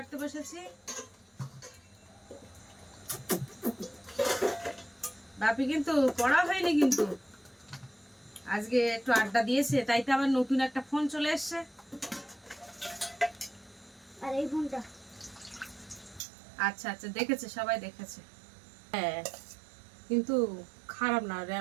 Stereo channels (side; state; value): left; drops out; at 16.2 s